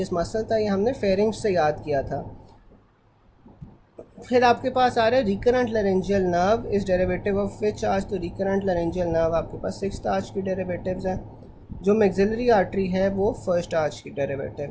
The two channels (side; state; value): both; identical; correlation 1.00